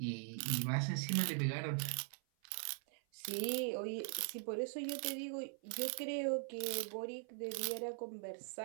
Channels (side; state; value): left; silent; 50 dB below the other